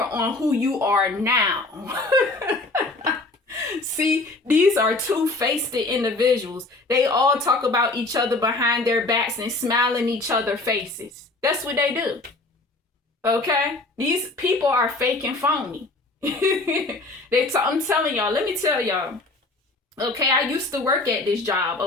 on who you are now. See, these are two-faced individuals. They all talk about each other behind their backs and smile in each other's faces. That's what they do, okay? These people are fake and phony. I'm telling y'all, let me tell y'all. Okay, I used to work at this job,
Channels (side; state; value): right; quieter; 3.1 dB